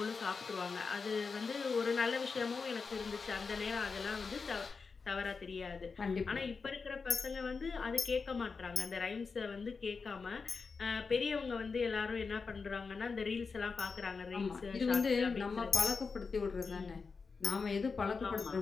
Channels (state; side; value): quieter; right; 4.9 dB